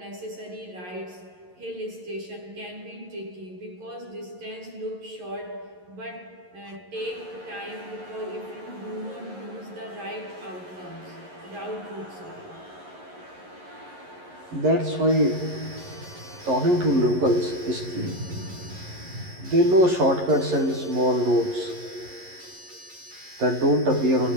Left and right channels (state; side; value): late; left; 11 ms